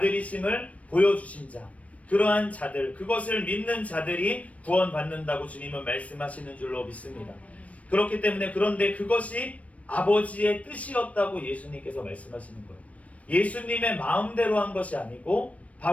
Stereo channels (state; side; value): late; right; 0.066 ms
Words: 보여주신 자, 그러한 자들, 그것을 믿는 자들이 구원받는다고 주님은 말씀하시는 줄로 믿습니다. 그렇기 때문에, 그런데 그것이 아버지의 뜻이었다고 예수님께서 말씀하시는 거예요. 예수님의 마음대로 한 것이 아니고